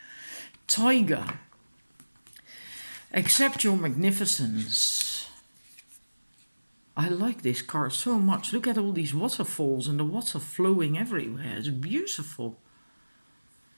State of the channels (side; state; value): both; inverted; correlation -1.00